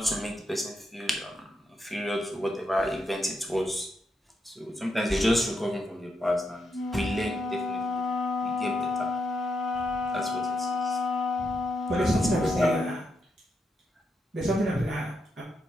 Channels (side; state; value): both; normal; correlation 0.82